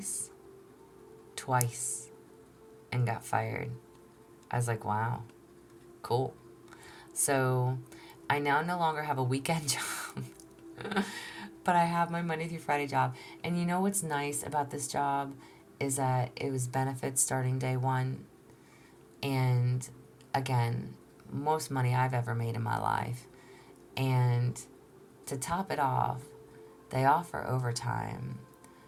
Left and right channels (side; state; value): both; identical; correlation 1.00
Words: and got fired. I was like, wow. Cool. So I now no longer have a weekend job, but I have my Monday through Friday job. And you know what's nice about this job is that it was benefits starting day one. And again, most money I've ever made in my life. And to top it off, they offer overtime.